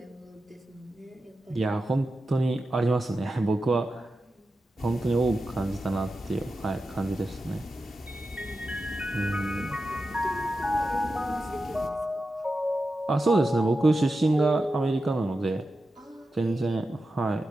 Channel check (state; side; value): normal; both; correlation 0.91